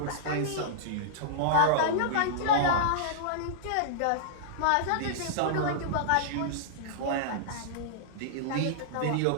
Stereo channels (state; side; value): different; both; correlation -0.02